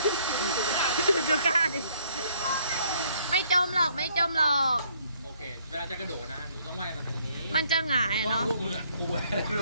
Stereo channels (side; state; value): both; inverted; correlation -0.65